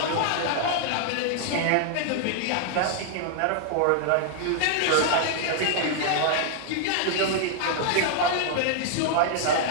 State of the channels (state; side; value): different; both; correlation 0.00